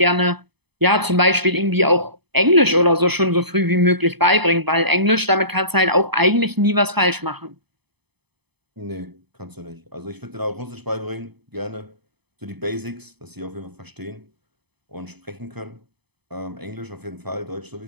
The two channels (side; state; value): left; late; 0.98 ms